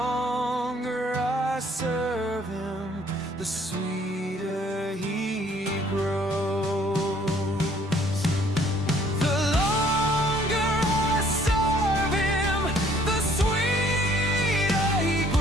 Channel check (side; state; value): both; normal; correlation 0.60